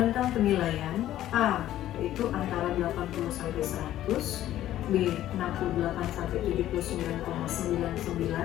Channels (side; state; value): right; quieter; 13.1 dB